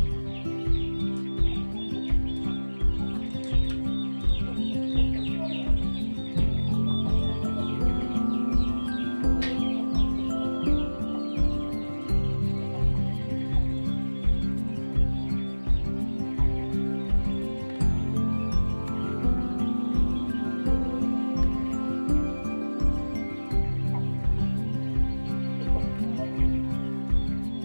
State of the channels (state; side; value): inverted; both; correlation -1.00